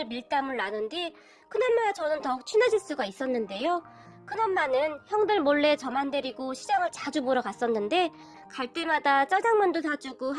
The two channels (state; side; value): identical; both; correlation 1.00